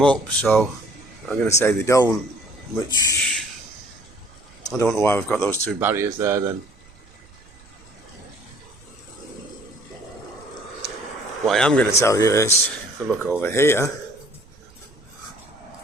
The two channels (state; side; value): noise; right; rumble, 26 dB below the sound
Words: up, so I'm going to say they don't, which I don't know why we've got those two barriers there then. What I am going to tell you is, if I look over here,